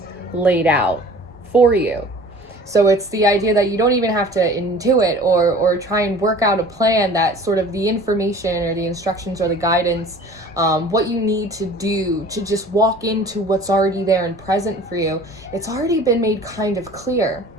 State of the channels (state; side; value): noise; right; rumble, 28 dB below the sound